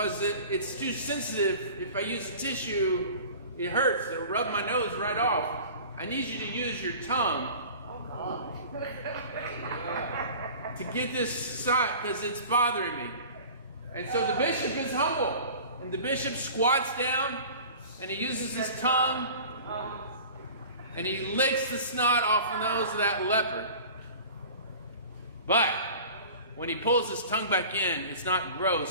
it's too sensitive. If I use a tissue, it hurts. It'll rub my nose right off. I need you to use your tongue to get this snot because it's bothering me." And so the bishop is humble. And the bishop squats down and he uses his tongue and he licks the snot off the nose of that leper. But when he pulls his tongue back in, it's not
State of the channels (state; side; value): inverted; both; correlation -0.41